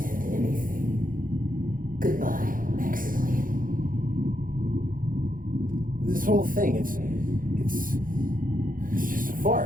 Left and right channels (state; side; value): late; left; 0.40 ms